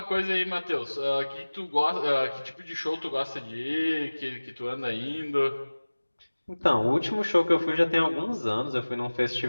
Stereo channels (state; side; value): inverted; both; correlation -1.00